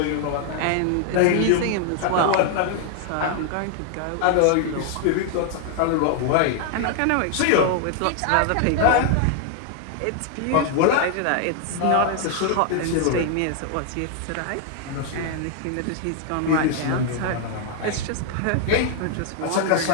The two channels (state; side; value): different; both; correlation 0.00